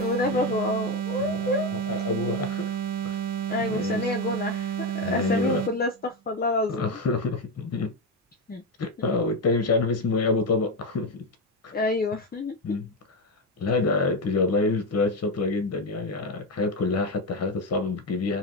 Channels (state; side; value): normal; both; correlation 0.12